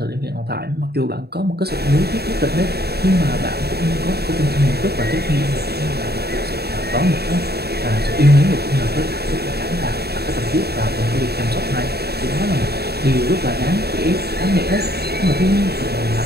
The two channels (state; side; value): late; left; 0.47 ms